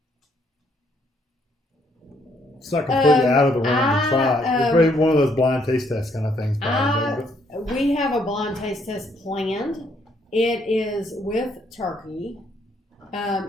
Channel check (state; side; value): normal; both; correlation 0.69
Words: It's not completely out of the realm to try. It's probably one of those blind taste test kind of things. We have a blind taste test planned. It is with turkey.